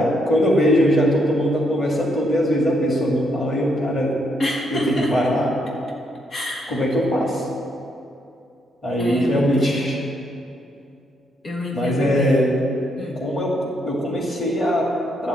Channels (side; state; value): both; normal; correlation 0.75